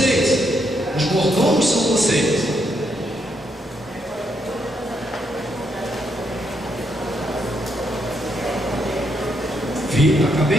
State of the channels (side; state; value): both; normal; correlation 0.77